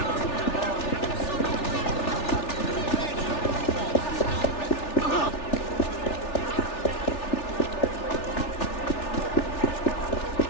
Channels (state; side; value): late; right; 3.4 ms